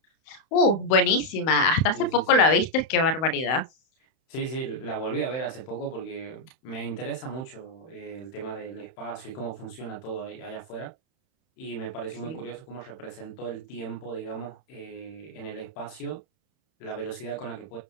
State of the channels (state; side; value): late; right; 31 ms